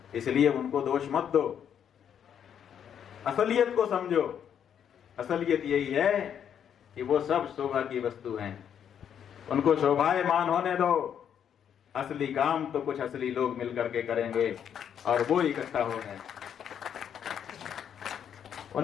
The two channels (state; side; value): quieter; right; 8.7 dB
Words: इसलिए उनको दोष मत दो। असलियत को समझो। असलियत यही है कि वो सब शोभा की वस्तु हैं। उनको शोभायमान होने दो, असली काम तो कुछ असली लोग मिलकर के करेंगे और वो इकट्ठा हो गए।